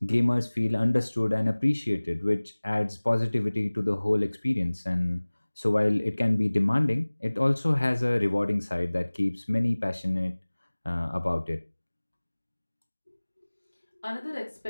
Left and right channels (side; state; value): both; inverted; correlation -1.00